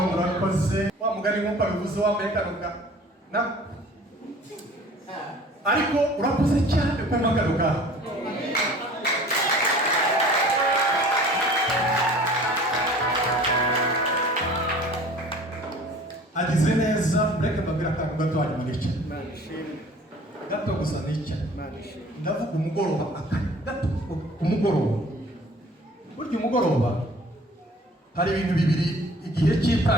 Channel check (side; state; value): both; normal; correlation 0.47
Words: urakoze wa mugari nk'uko abivuze wambaye karuka na ariko urakoze cyane ku magaruka agize neza mureke mbabwira akantu gato hanyuma nicara gato gusa nicara ndavuga umugoroba gato umugoroba burya umugoroba hari ibintu bibiri igihe